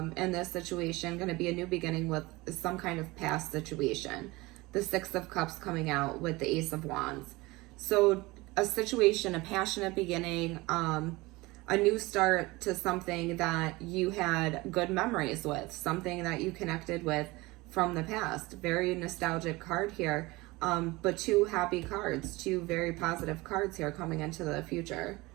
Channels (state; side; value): quieter; left; 22.0 dB